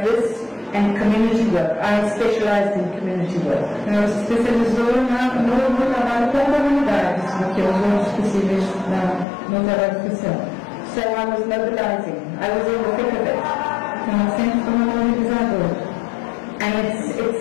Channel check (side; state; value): right; drops out; at 9.2 s